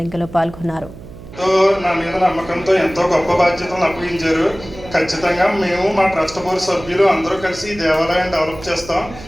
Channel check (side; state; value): right; noise; hum, 16 dB below the sound